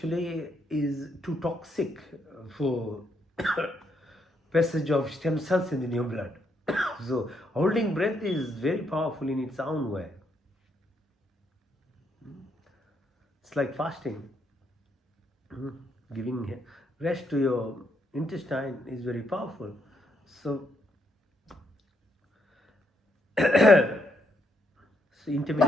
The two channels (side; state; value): both; normal; correlation 0.76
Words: is too toxic for passage of stem cells in your blood. So holding breath is very powerful in its own way. It's like fasting. Giving rest to your intestine is very powerful. So,